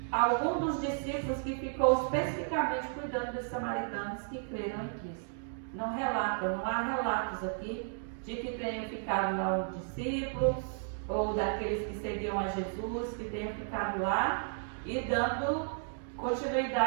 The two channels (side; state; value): left; silent; digital silence